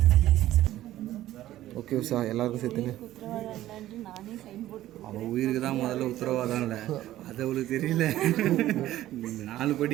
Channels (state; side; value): quieter; left; 14.2 dB